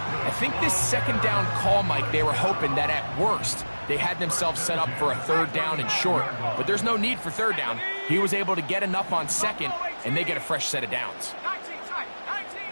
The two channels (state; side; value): inverted; both; correlation -1.00